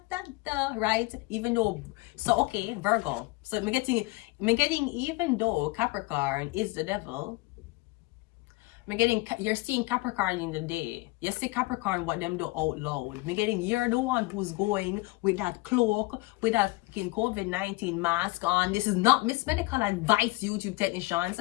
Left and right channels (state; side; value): quieter; right; 22.4 dB